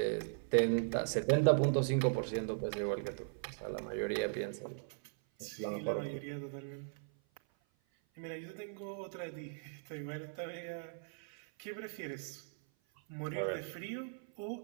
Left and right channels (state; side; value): silent; left; 52 dB below the other